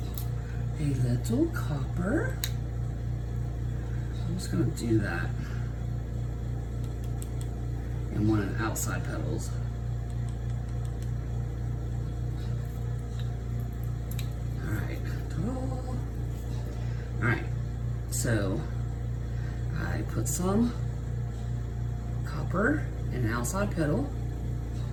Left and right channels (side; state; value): both; identical; correlation 1.00